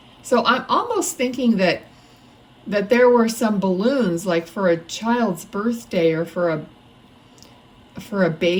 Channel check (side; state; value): both; identical; correlation 1.00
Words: So I'm almost thinking that there were some balloons, like for a child's birthday, or for a